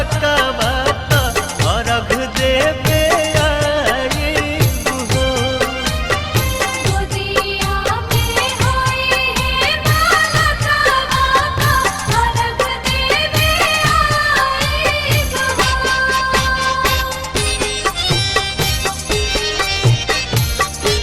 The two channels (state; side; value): identical; both; correlation 1.00